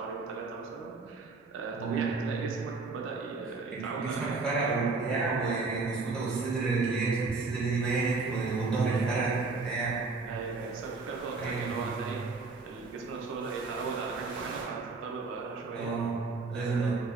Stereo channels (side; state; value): left; quieter; 4.0 dB